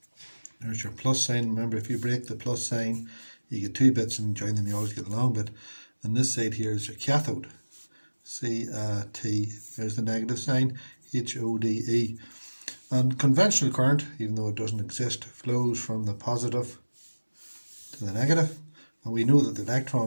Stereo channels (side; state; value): both; inverted; correlation -1.00